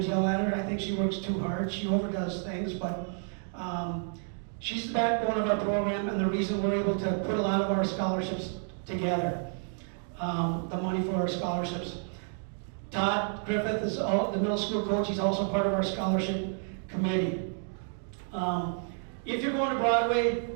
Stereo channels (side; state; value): left; silent; 58 dB below the other